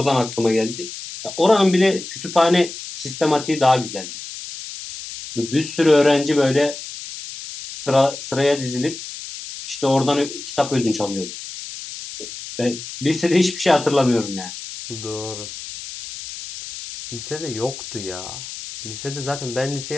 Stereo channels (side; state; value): left; noise; hiss, 11 dB below the sound